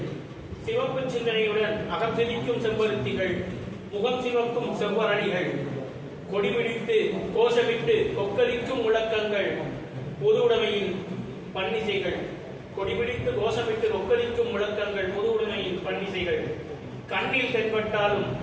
சிவப்பு சிந்தனையுடன் அகம் சிரிக்கும் செம்பருத்திகள், முகம் சிவக்கும் செவ்வரணிகள், கொடிபிடித்து கோஷமிட்டு கொக்கரிக்கும் முழக்கங்கள், பொது உடைமையின் பன்னிசைகள், கொடிபிடித்து கோஷமிட்டு கொக்கரிக்கும் முழக்கங்கள், பொது உடைமையின் பன்னிசைகள். கண்ணில் தென்பட்டாலும்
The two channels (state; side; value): identical; both; correlation 1.00